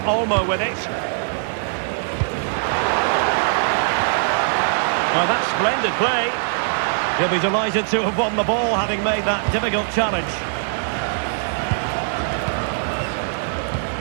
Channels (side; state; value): left; silent; 64 dB below the other